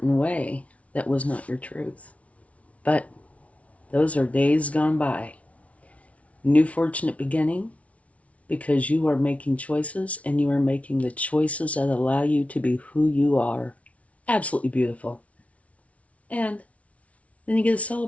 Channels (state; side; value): late; right; 0.065 ms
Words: way that was not your truth. But those are days gone by. New fortunate beginning, because you are making choices, and you are making the choices that allow you to be who you are. Absolutely beautiful. And then you get to